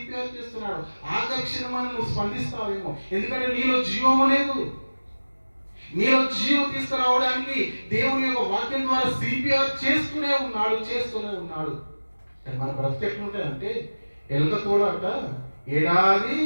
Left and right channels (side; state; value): both; inverted; correlation -1.00